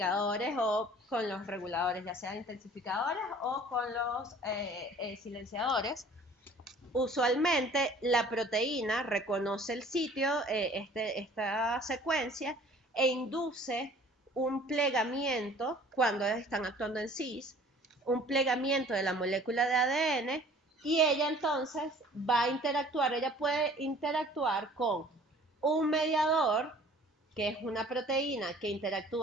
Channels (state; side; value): normal; both; correlation 0.51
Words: o con los reguladores, ya sean intensificadores o con los silenciadores. Usualmente la proteína reconoce el sitio, esta secuencia, e induce un plegamiento cuando están actuando en cis, un plegamiento de la molécula de ADN, y ella entonces va a interactuar, ella puede interactuar con un mediador, que es una proteína que